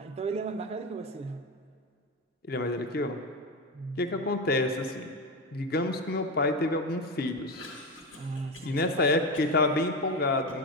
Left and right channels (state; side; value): normal; both; correlation 0.17